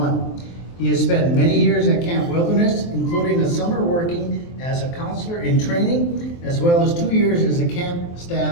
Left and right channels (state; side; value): late; right; 23 ms